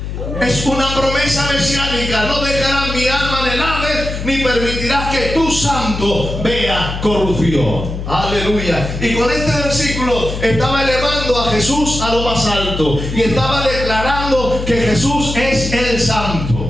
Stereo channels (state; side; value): noise; left; hum, 6 dB below the sound